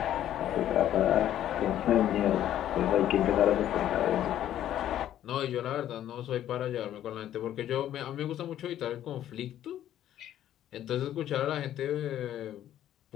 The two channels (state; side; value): quieter; right; 11.7 dB